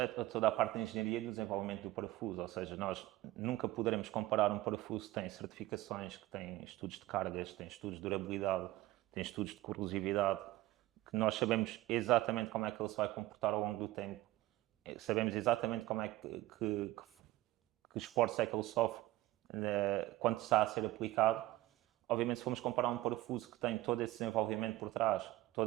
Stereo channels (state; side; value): quieter; left; 17.2 dB